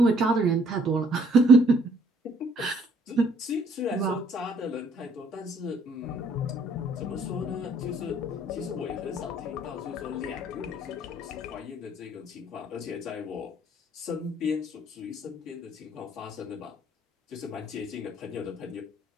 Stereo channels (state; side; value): normal; both; correlation 0.61